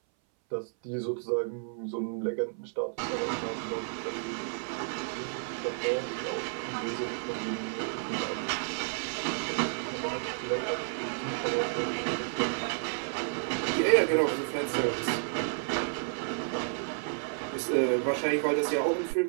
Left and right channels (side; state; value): left; silent; 57 dB below the other